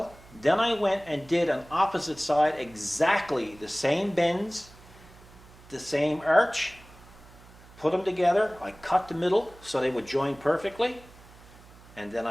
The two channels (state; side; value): noise; right; hum, 22 dB below the sound